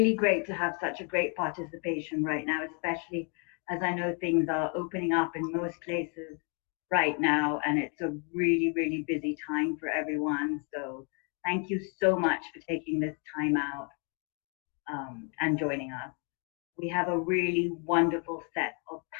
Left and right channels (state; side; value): quieter; right; 37.8 dB